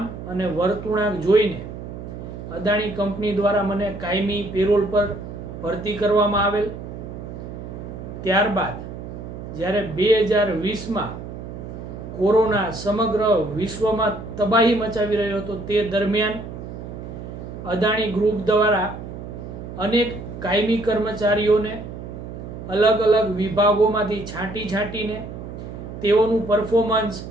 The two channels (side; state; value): right; noise; hum, 10 dB below the sound